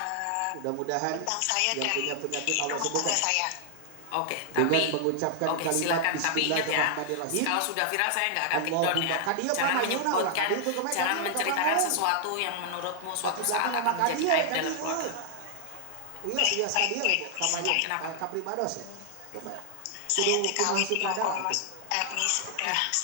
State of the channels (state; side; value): different; both; correlation -0.01